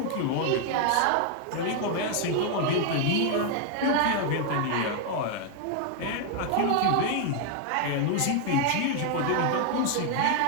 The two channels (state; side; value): different; both; correlation 0.00